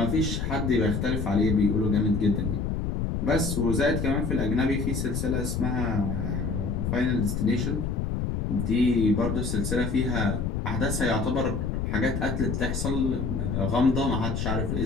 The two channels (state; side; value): noise; left; rumble, 1 dB below the sound